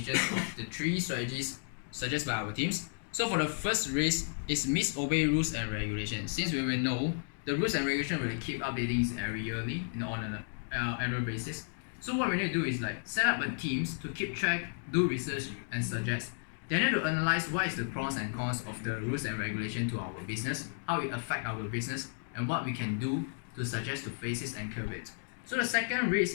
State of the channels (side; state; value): right; silent; digital silence